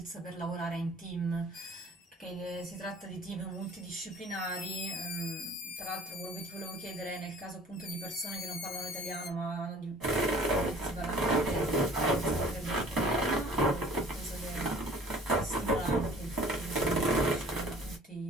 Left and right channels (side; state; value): both; normal; correlation 0.50